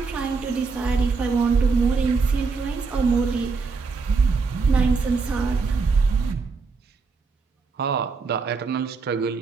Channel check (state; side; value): quieter; left; 4.6 dB